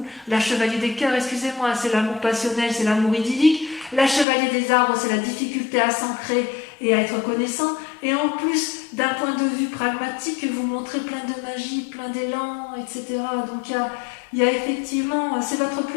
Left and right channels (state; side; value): drops out; right; at 4.2 s